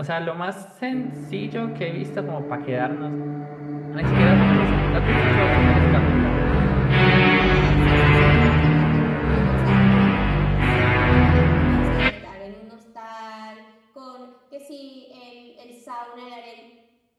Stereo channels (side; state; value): both; identical; correlation 1.00